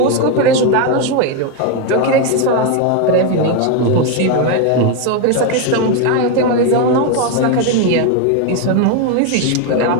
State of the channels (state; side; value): different; both; correlation 0.02